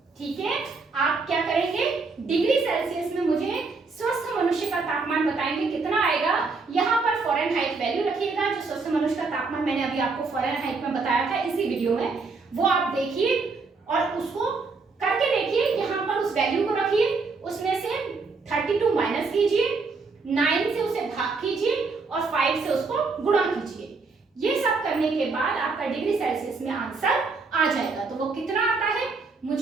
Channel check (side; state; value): left; quieter; 4.2 dB